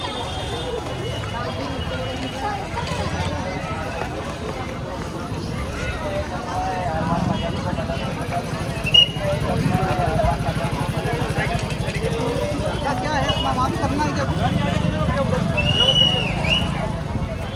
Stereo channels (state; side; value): identical; both; correlation 1.00